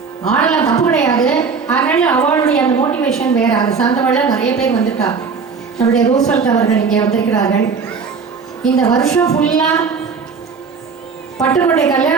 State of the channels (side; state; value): left; quieter; 5.4 dB